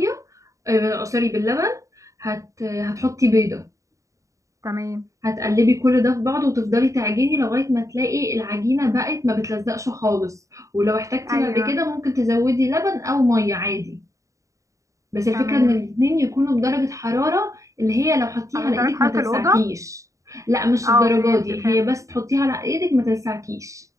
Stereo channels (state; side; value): late; left; 0.16 ms